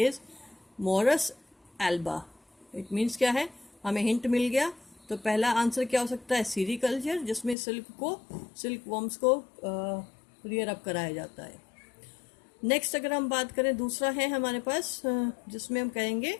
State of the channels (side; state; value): right; drops out; at 7.6 s